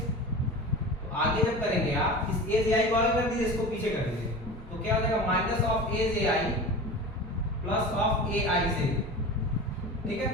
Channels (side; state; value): both; normal; correlation 0.33